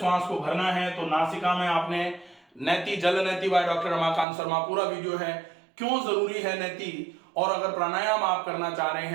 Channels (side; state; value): left; drops out; at 4.2 s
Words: को भरना है, तो नासिका में आपने नैति, जल नैति बाय डॉक्टर रमाकांत शर्मा, पूरा वीडियो है, क्यों जरूरी है नैति, और अगर प्राणायाम आप करना चाह रहे